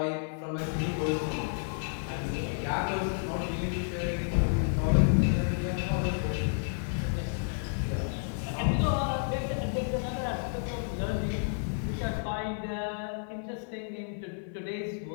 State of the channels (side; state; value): right; silent; 57 dB below the other